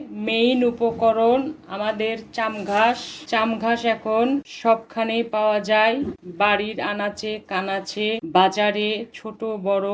মেইন উপকরণ আমাদের চামঘাস এখন সবখানেই পাওয়া যায়, বাড়ির আনাচে কানাচে, বাজারে, ছোট বড়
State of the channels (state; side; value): identical; both; correlation 1.00